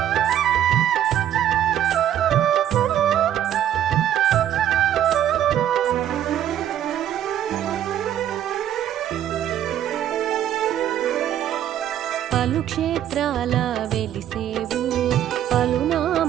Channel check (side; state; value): left; quieter; 11.0 dB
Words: పలు క్షేత్రాల వెలిసేవు